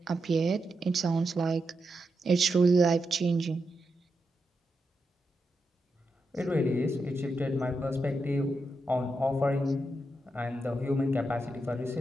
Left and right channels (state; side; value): normal; both; correlation 0.86